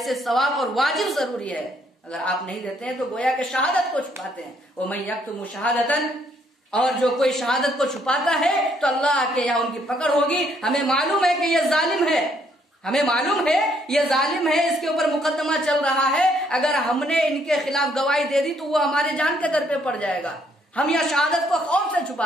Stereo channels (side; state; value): both; normal; correlation 0.69